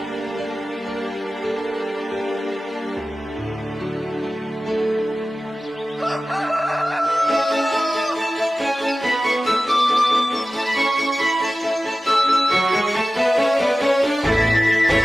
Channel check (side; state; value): both; normal; correlation 0.96